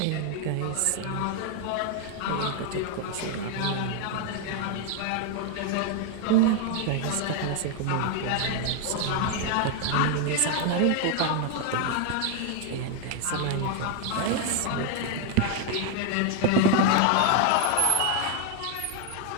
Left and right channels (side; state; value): both; different; correlation 0.01